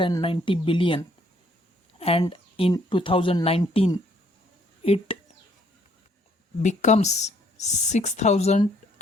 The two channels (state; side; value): normal; both; correlation 0.66